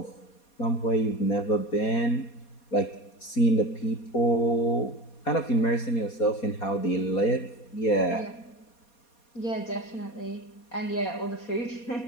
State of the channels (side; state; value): right; late; 4.2 ms